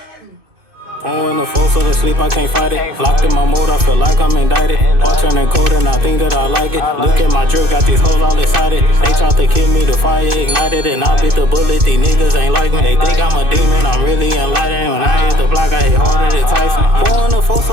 Pouring the four so to sleep, I can't fight it. Locked in my mode, I feel like I'm indicted. All turning cold and I think that I like it. Look at my drip, got these hoes all excited. They tried to kill me, the fire ignited, and I bit the bullet. These niggas ain't like me. They think I'm a demon, I'm really enlightened. When I hit the block, I hit harder than Tyson. Pouring the four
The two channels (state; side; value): late; left; 2.6 ms